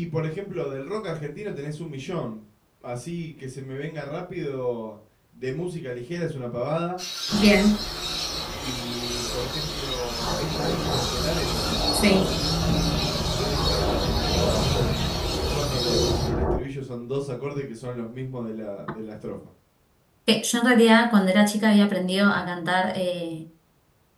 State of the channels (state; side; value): identical; both; correlation 1.00